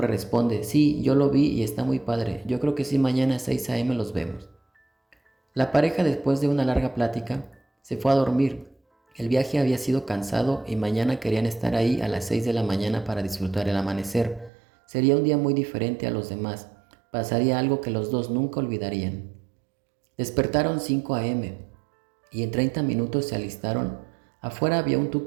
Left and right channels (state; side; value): drops out; left; at 14.5 s